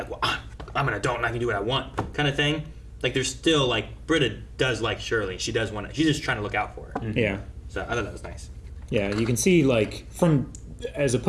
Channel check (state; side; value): identical; both; correlation 1.00